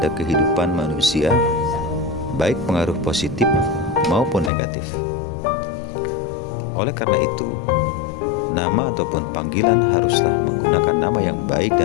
kehidupan manusia, baik pengaruh positif maupun negatif. Oleh karena itu, nama ataupun panggilan haruslah menggunakan nama yang baik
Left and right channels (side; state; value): right; drops out; at 4.5 s